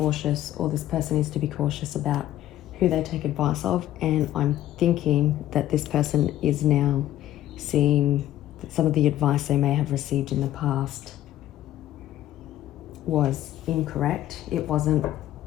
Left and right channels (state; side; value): quieter; right; 13.2 dB